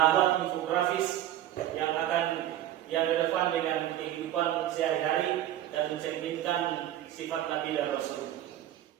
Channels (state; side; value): quieter; left; 12.7 dB